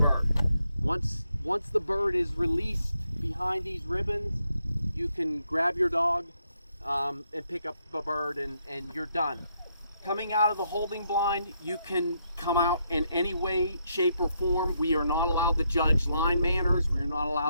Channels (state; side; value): inverted; both; correlation -0.77